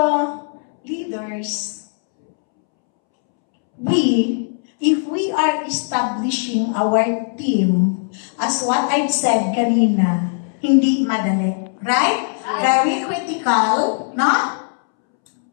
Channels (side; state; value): right; silent; 67 dB below the other